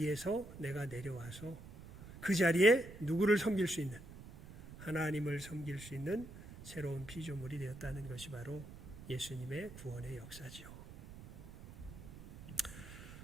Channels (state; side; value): noise; right; rumble, 15 dB below the sound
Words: 내가 내려와서 그 자리에 누구를 섬길 수 있는, 하나님을 섬길 수 있는 새로운 피조물이 되었다는 것이 바로 예수님의 구원의 역사지요.